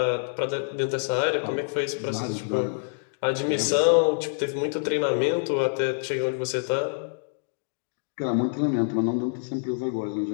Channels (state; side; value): silent; right; digital silence